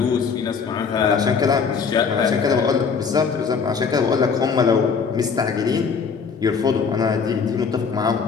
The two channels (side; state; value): right; quieter; 5.8 dB